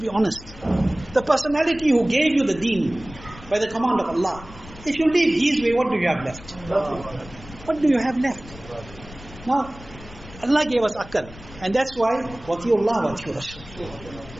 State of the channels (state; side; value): noise; left; rumble, 17 dB below the sound